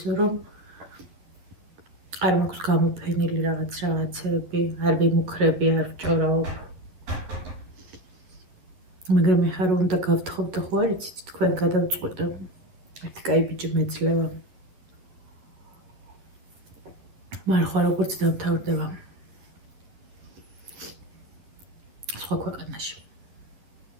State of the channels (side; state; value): left; late; 11 ms